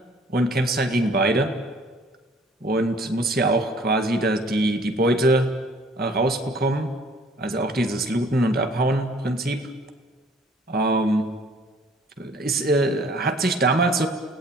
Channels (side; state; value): both; normal; correlation 0.56